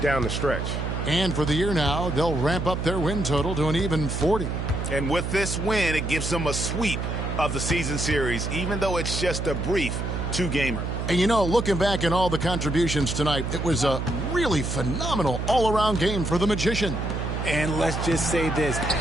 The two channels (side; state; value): right; noise; hum, 3 dB below the sound